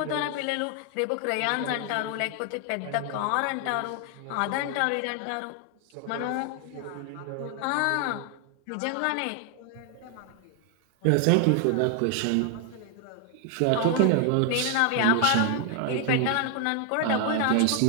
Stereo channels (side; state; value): both; different; correlation 0.00